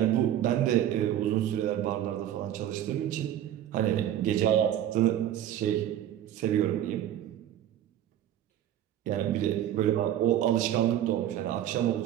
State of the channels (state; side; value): quieter; left; 11.4 dB